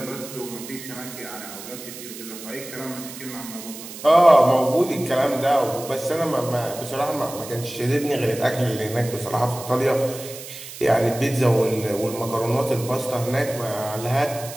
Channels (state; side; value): noise; right; hiss, 13 dB below the sound